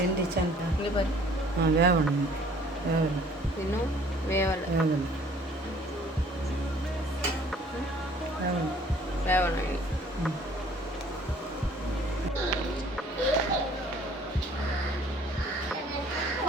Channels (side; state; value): both; normal; correlation 0.55